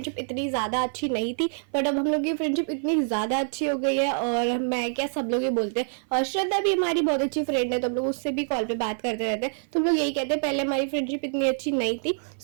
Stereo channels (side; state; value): left; silent; 55 dB below the other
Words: इतनी ज़्यादा अच्छी नहीं थी। बट अब हम लोग की फ्रेंडशिप इतनी ज़्यादा अच्छी हो गई है और मैं क्या सब लोग ये बोलते हैं। और श्रद्धा भी हमारी बहुत अच्छी फ्रेंड है, तो हम लोग उससे भी कॉल पे बात करते रहते हैं। तो हम लोग यही कहते हैं पहले हमारी फ्रेंडशिप इतनी अच्छी नहीं थी।